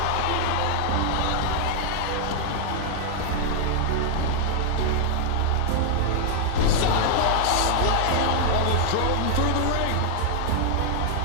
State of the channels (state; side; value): different; both; correlation -0.01